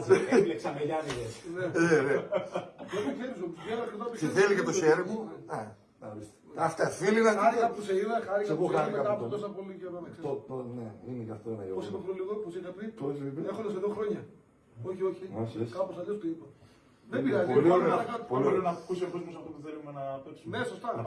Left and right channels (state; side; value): identical; both; correlation 1.00